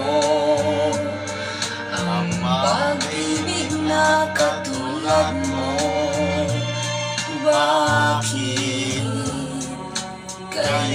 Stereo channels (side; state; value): both; identical; correlation 1.00